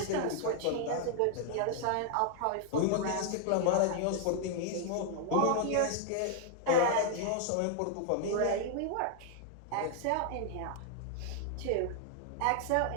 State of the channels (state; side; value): different; both; correlation 0.00